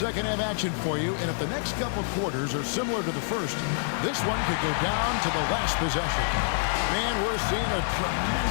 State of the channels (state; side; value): silent; right; digital silence